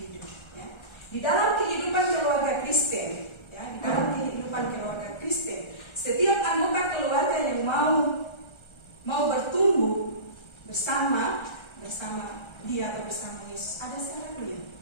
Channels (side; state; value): right; late; 1.3 ms